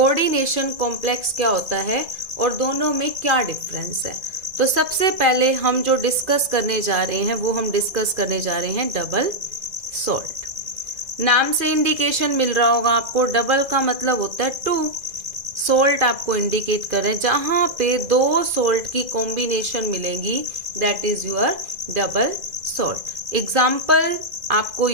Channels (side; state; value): left; late; 2.0 ms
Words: कॉम्प्लेक्स क्या होता है और दोनों में क्या डिफरेंस है। तो सबसे पहले हम जो डिस्कस करने जा रहे हैं वो हम डिस्कस करने जा रहे हैं डबल सोल्ट। नाम से इंडिकेशन मिल रहा होगा आपको, डबल का मतलब होता है 2, सोल्ट आपको इंडिकेट कर रहे हैं, जहां पे 2 सोल्ट की कॉम्बिनेशन मिलेंगी that is your double salt. Example आपको